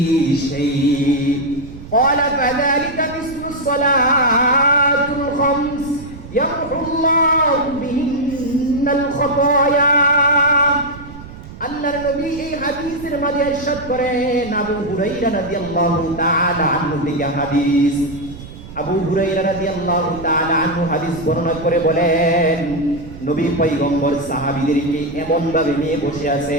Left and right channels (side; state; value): right; noise; rumble, 15 dB below the sound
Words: شيء قال فذلك مثل الصلاة الخمس يمحو الله بهن الخطايا আল্লাহর নবী এই হাদিসের মাঝে ইরশাদ করেন আবু হুরায়রা রাদিয়াল্লাহু তাআলা আনহু থেকে হাদিস আবু হুরায়রা রাদিয়াল্লাহু তাআলা আনহু হাদিস বর্ণনা করে বলেন নবী পয়গম্বর সাহাবীদেরকে এমন ভাবে নিয়ে বসে